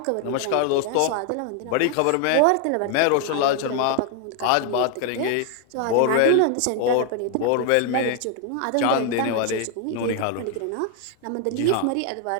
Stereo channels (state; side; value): different; both; correlation 0.00